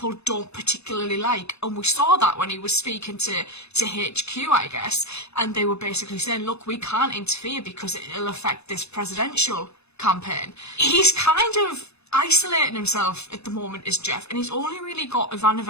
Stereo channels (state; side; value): late; right; 0.80 ms